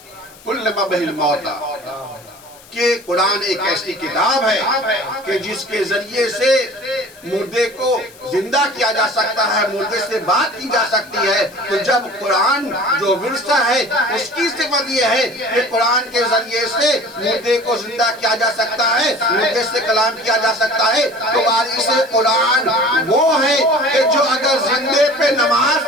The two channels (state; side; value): noise; left; hiss, 23 dB below the sound